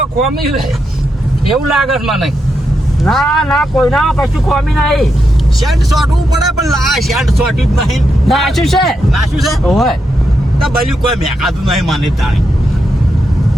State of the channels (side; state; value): both; normal; correlation 0.84